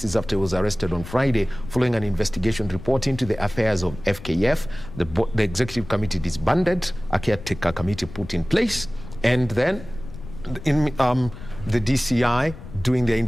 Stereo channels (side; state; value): left; noise; rumble, 14 dB below the sound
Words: is after he was arrested on Friday following an investigation report into the affairs of FKF. The executive committee disbanded, a caretaker committee put in place, and then the DCI doing their